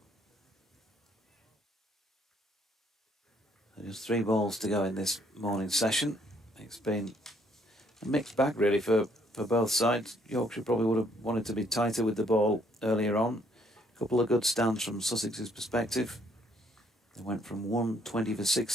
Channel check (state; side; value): normal; both; correlation 0.67